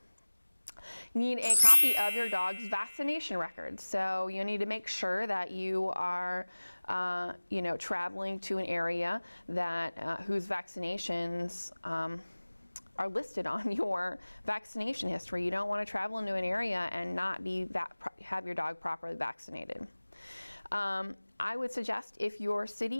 You need a copy of your dog's vaccination record. So you need to make sure that you are, traveling to an area that whose vaccinations are listed on your vaccination history. You don't want to travel into an area and not have your dog properly vaccinated. I would suggest if your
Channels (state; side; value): inverted; both; correlation -1.00